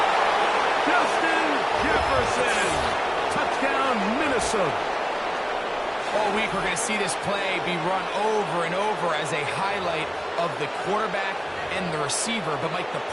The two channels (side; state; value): both; identical; correlation 1.00